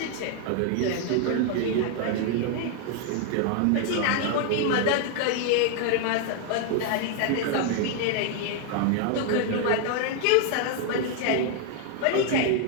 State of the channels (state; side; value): different; both; correlation 0.00